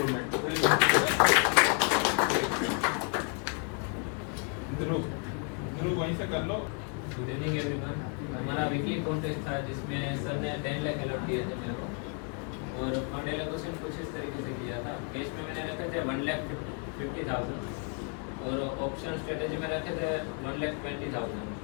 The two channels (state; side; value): quieter; right; 38.6 dB